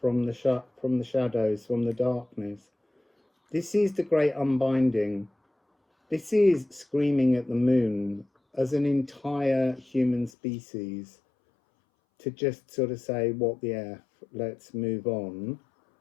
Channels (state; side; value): drops out; right; at 10.3 s